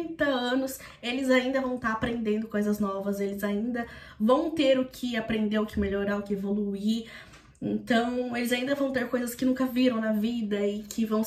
anos, eles ainda vão estar aprendendo coisas novas, eles ainda vão ter o que aprender, o que melhorar, o que evoluir. Então, eles ainda vão ter coisas que nunca viram na vida e que vão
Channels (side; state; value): both; identical; correlation 1.00